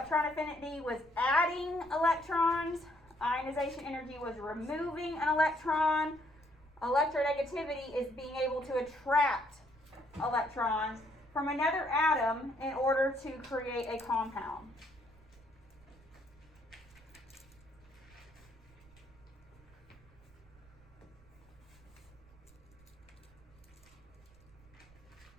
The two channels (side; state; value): right; noise; rumble, 25 dB below the sound